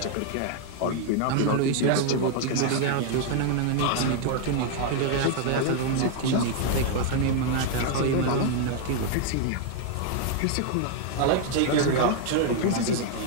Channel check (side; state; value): both; different; correlation 0.00